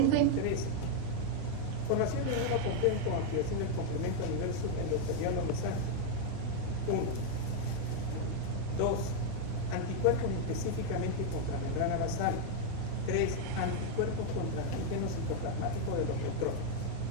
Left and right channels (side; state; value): both; different; correlation 0.00